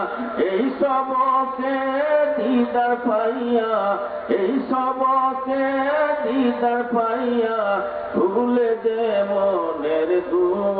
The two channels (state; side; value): identical; both; correlation 1.00